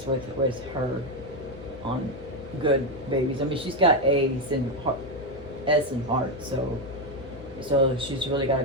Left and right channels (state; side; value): noise; left; hum, 17 dB below the sound